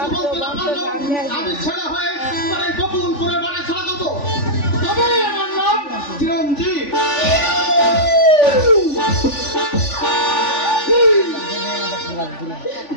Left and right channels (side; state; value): right; late; 3.5 ms